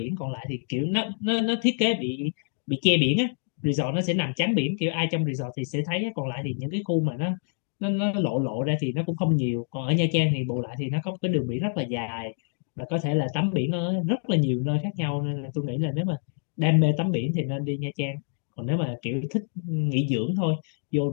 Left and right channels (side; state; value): right; silent; 60 dB below the other